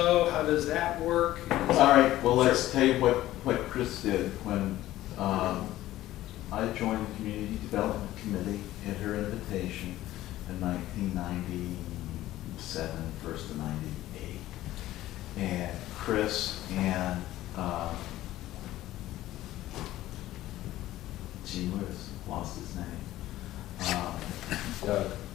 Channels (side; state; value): right; quieter; 15.0 dB